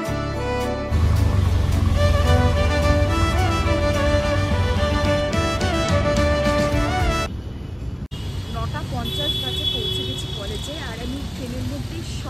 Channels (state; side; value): identical; both; correlation 1.00